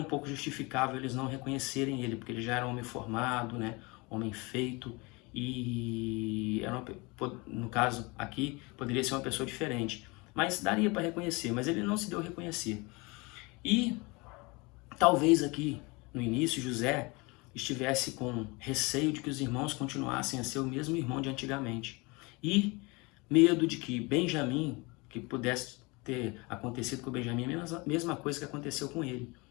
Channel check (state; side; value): quieter; right; 26.5 dB